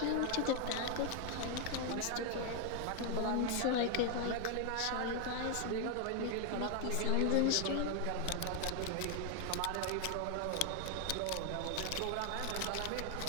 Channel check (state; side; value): different; both; correlation 0.00